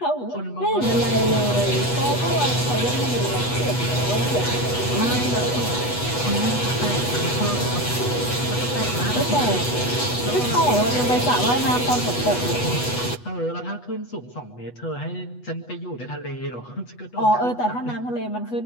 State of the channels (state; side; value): late; right; 8.2 ms